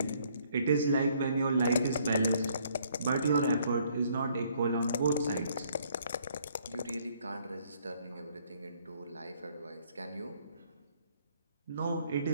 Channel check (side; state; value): both; inverted; correlation -0.65